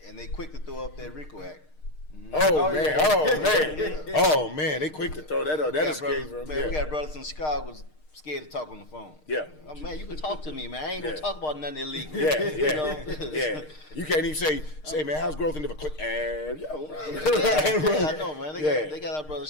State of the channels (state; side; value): late; right; 6.5 ms